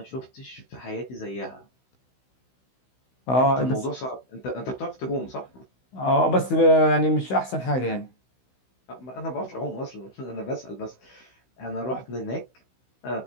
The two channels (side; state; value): right; late; 16 ms